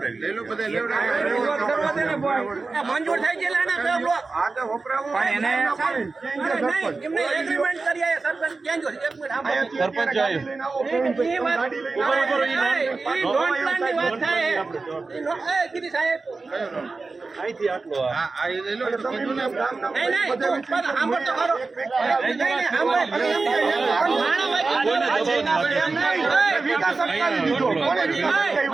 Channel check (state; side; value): quieter; left; 3.9 dB